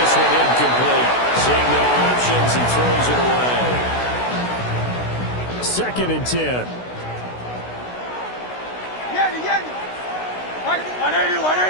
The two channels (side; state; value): right; late; 16 ms